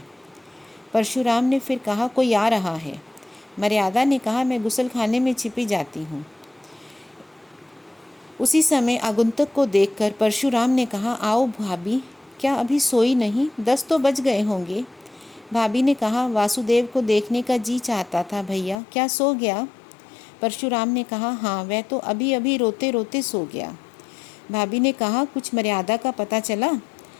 परशुराम ने फिर कहा, कोई आ रहा है। मर्यादा ने कहा, मैं गुसलखाने में छिपी जाती हूँ। उसी समय आगंतुक को देखकर परशुराम ने कहा, आओ भाभी, क्या अभी सोई नहीं? 10 तो बज गए होंगे। भाभी ने कहा, वासुदेव को देखने का जी चाहता था भैया, क्या सो गया? परशुराम ने कहा, हाँ, वह तो अभी अभी रोते रोते सो गया। भाभी ने कहा, कुछ मर्यादा का पता चला?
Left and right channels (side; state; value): right; drops out; at 18.8 s